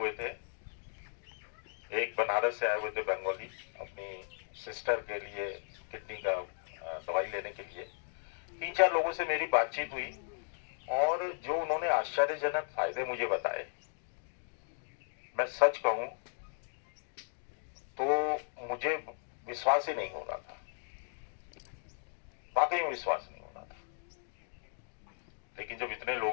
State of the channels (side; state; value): right; silent; digital silence